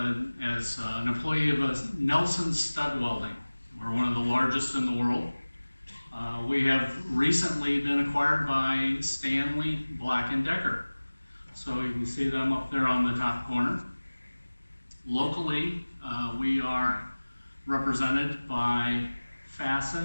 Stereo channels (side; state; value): both; inverted; correlation -1.00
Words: as an employee of Nelson Stud Welding. We're one of the largest in the world. We have recently been acquired by Stanley Black & Decker. So you can see them up there on the top corner. Locally, we are represented by